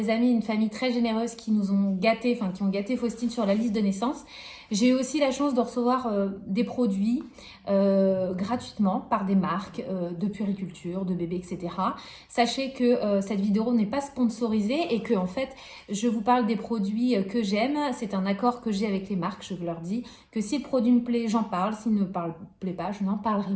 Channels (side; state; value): both; identical; correlation 1.00